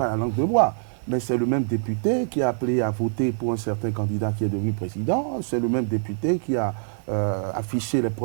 la langue de bois, mais c'est le même député qui a appelé à voter pour un certain candidat qui est devenu président. C'est le même député qui a affiché les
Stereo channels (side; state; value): left; silent; digital silence